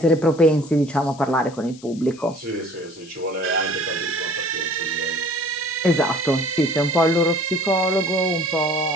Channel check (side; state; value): left; noise; hiss, 22 dB below the sound